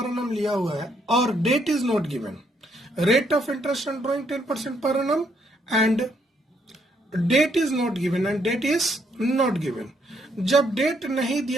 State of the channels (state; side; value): normal; both; correlation 0.73